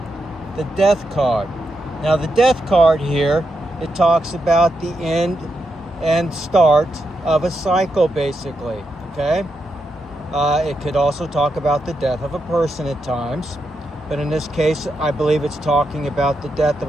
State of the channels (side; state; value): both; normal; correlation 0.84